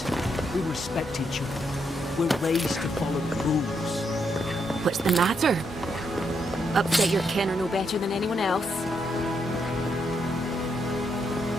we respect each other. We're raised to follow the rules. What's the matter? Upset your kin are no better than anyone else.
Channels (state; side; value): normal; both; correlation 0.78